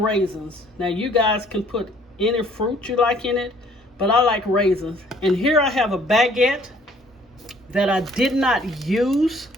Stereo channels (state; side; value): normal; both; correlation 0.59